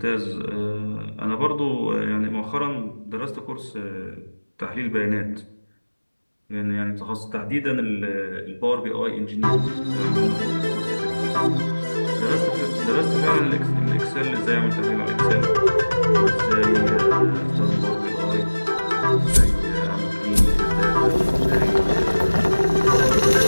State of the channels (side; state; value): both; inverted; correlation -1.00